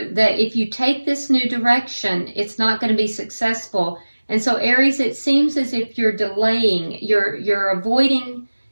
that if you take this new direction, it's not going to be successful. And so Aries, it seems as if you're delaying, you're avoiding,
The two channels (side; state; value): both; inverted; correlation -1.00